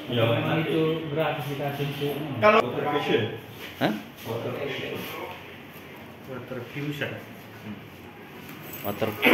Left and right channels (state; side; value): identical; both; correlation 1.00